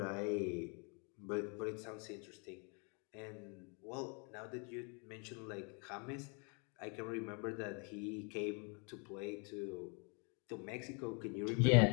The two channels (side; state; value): right; quieter; 35.6 dB